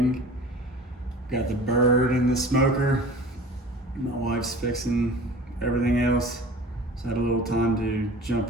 Got the bird in the smoker. My wife's fixing everything else, so I had a little time to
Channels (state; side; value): normal; both; correlation 0.41